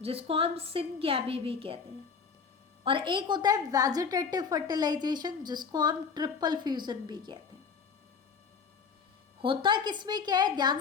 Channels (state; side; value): quieter; right; 5.8 dB